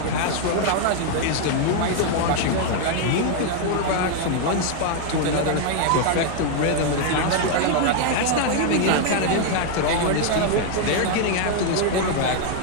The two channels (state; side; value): different; both; correlation 0.00